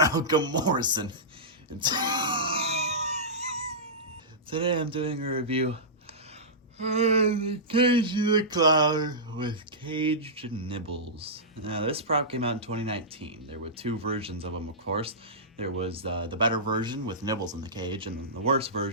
Morrison. And today I'm doing a review of the Cagey the Clown with caged nibbles. Now, this prop came out in 2019. There were two versions of them, of course. There was the better version with Nibbles in the cage, and then the worse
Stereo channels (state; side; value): normal; both; correlation -0.16